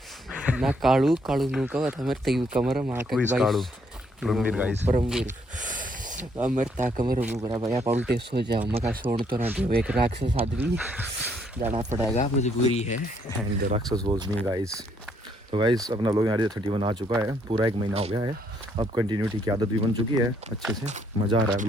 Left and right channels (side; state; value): both; normal; correlation 0.70